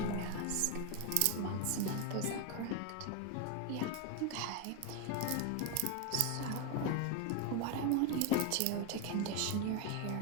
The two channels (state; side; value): different; both; correlation 0.02